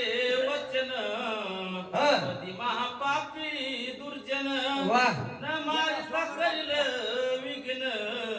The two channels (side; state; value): both; identical; correlation 1.00